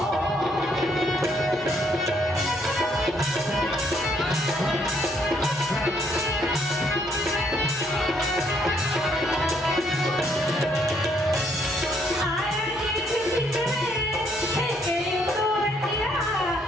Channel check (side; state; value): both; normal; correlation 0.70